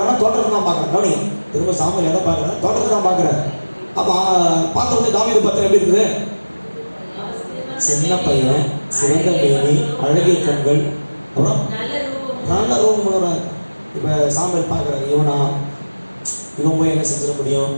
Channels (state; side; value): inverted; both; correlation -1.00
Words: தோட்டத்தை தான் பார்க்குறேன். கவனிங்க, திரும்ப சாமியில் எதை பார்க்குறேன்? தோட்டத்தை தான் பார்க்குறேன். அப்போ பார்த்த உடனே தாவீது பத்திரம் எப்படி இருக்குது? சின்ன பையன், சிறந்த மேனி, அழகிய கண்கள், அப்புறம் நல்ல ரூபம் உள்ளவரா. இப்போ சாமியில் பார்க்குறேன், இவன் போய் என்ன செஞ்சிட முடியும்?